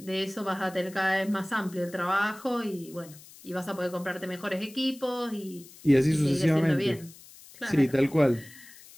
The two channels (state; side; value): noise; left; hiss, 21 dB below the sound